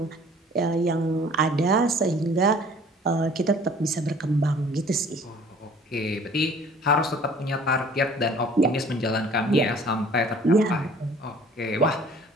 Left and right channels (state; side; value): normal; both; correlation 0.51